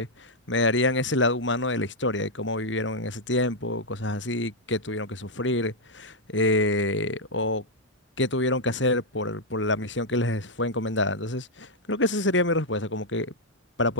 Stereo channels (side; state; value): both; normal; correlation -0.03